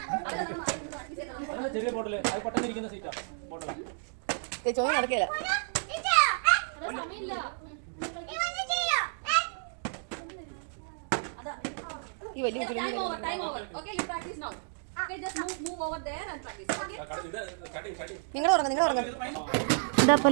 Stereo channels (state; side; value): silent; left; digital silence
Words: ചെറിയ ബോട്ടില് അത് പെട്ടെന്ന് ഇരിക്കുന്ന സീറ്റാ ബോട്ടിലാ. ചോദ്യം നടക്കില്ല. ഈ വലിയ നിങ്ങൾ ഉറങ്ങും. ഇതപ്പോൾ